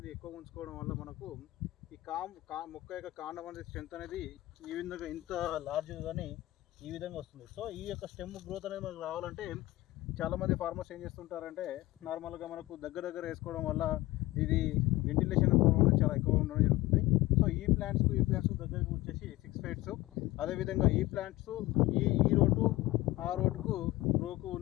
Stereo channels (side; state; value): right; quieter; 18.2 dB